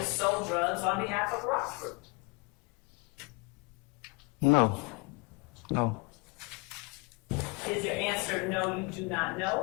sold drugs on behalf of Rock Group? No. No. Is your answer no, you do not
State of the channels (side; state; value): right; quieter; 29.6 dB